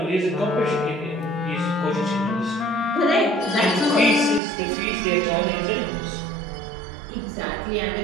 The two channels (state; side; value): drops out; left; at 4.4 s